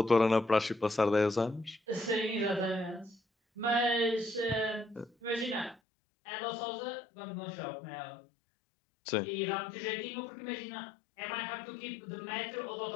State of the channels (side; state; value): right; drops out; at 5.8 s